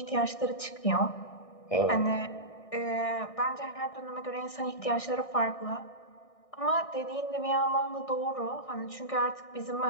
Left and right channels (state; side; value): late; right; 1.6 ms